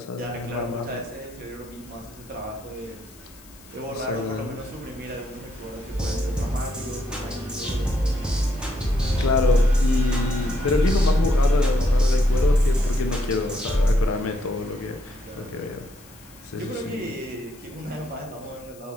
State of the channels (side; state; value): left; noise; hiss, 24 dB below the sound